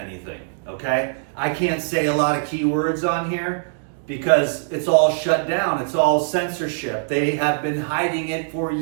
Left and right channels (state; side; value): silent; left; digital silence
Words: okay? I can't say a lot of keywords on here because it's all shut down. It's all censorship. They have been hiding it for